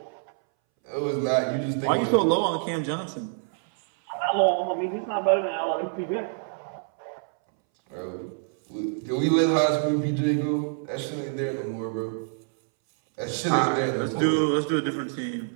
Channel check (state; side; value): silent; left; 61 dB below the other